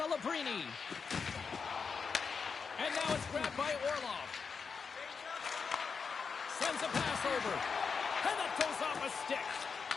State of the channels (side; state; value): right; quieter; 5.5 dB